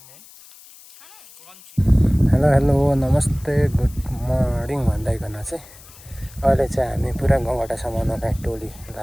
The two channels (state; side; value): noise; left; hiss, 22 dB below the sound